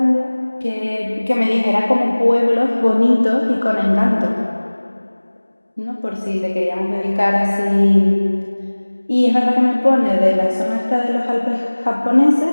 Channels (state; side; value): inverted; both; correlation -1.00